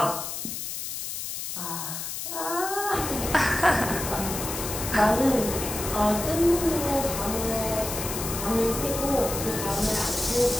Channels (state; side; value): noise; left; hiss, 5 dB below the sound